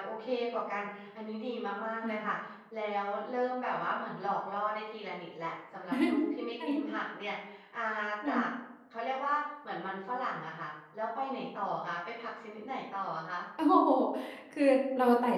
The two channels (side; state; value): both; identical; correlation 1.00